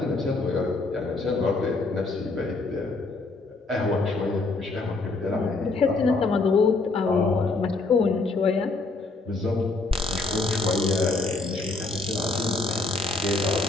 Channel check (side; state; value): right; quieter; 3.4 dB